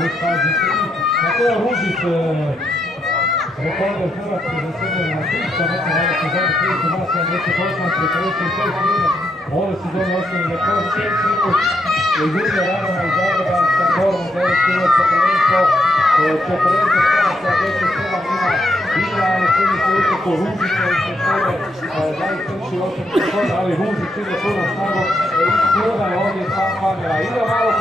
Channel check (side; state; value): both; normal; correlation 0.79